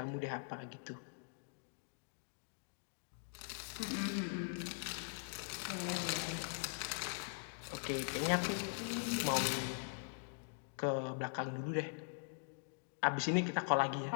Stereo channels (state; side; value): silent; right; digital silence